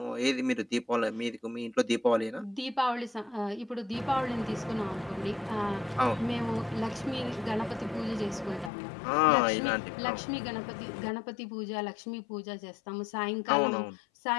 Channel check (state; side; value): drops out; right; at 8.7 s